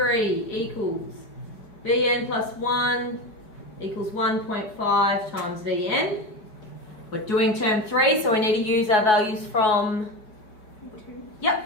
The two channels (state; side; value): late; right; 4.7 ms